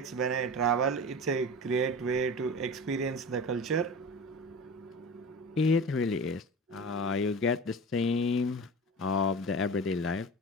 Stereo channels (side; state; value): both; normal; correlation 0.33